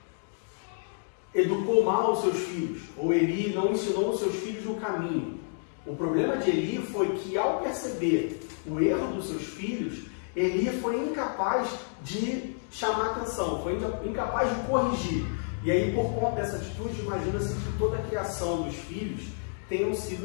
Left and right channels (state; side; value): silent; right; digital silence